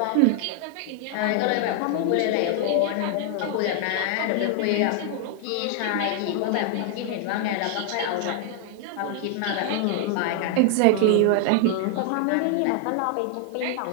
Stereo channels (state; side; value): different; both; correlation 0.00